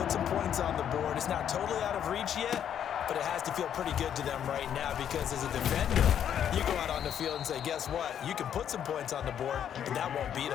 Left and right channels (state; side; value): quieter; right; 9.3 dB